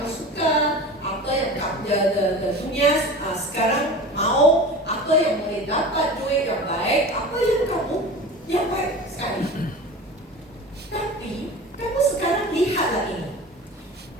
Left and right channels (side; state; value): both; normal; correlation 0.34